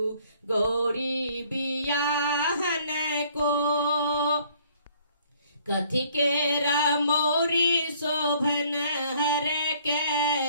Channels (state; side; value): inverted; both; correlation -0.60